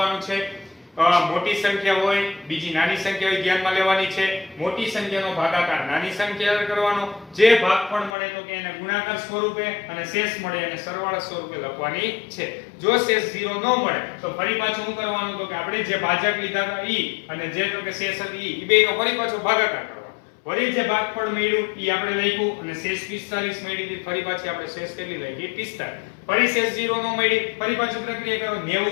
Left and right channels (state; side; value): drops out; right; at 8.1 s